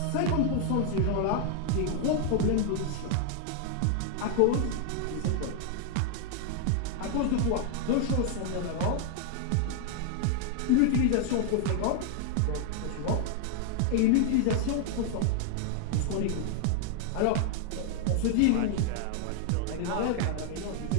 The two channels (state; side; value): different; both; correlation 0.00